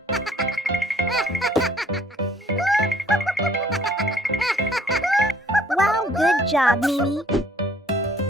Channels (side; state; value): both; normal; correlation 0.59